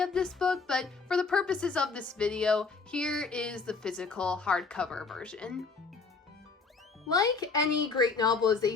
this book, but for the purposes of this video, here is the physical hardcover version. Like any great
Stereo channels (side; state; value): right; quieter; 4.6 dB